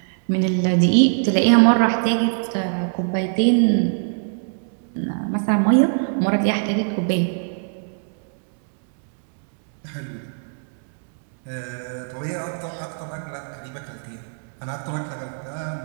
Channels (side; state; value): left; silent; digital silence